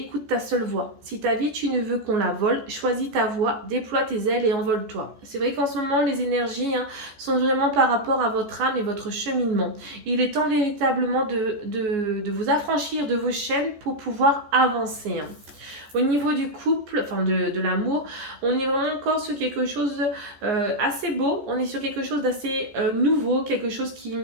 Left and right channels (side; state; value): left; late; 14 ms